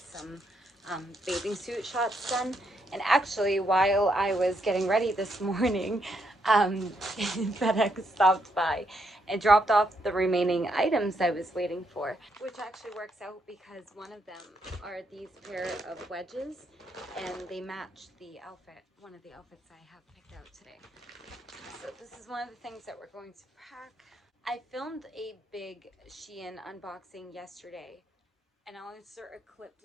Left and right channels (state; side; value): normal; both; correlation 0.77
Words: bathing suit shots done. And actually, while I was getting ready this morning, FedEx stopped by and dropped off the remaining items I was waiting for, which actually works out because one of them are these pair of wedges and they match the outfit, one of the outfits I have picked out today. So this is one of the things that we're going to pack. I filmed a big Shein unboxing yesterday, and I'll insert a clip